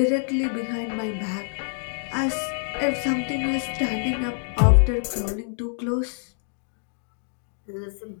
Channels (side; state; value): right; silent; digital silence